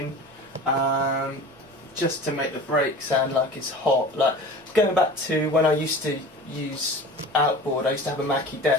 just to make the break sound like it's hot. Like going back to when I used to use Outboard, I used to have a Mackie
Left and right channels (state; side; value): normal; both; correlation 0.38